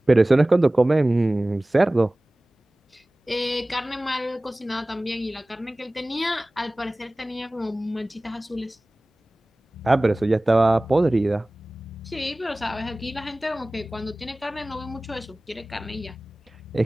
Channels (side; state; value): both; normal; correlation 0.98